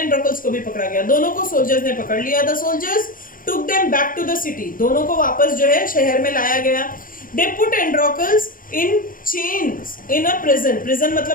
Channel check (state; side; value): late; right; 0.40 ms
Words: को भी पकड़ा गया, दोनों को सोल्जर्स ने पकड़ लिया। The soldiers took them back to the city, दोनों को वापस जो है शहर में लाया गया। They put Androcles in chains in a prison, prison